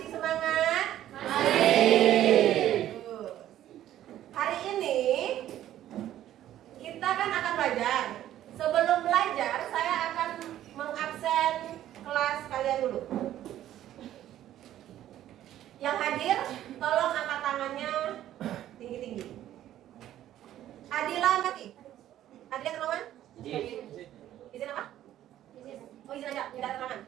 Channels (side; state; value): left; quieter; 12.4 dB